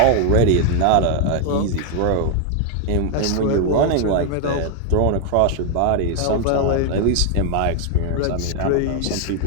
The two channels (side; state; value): both; different; correlation 0.01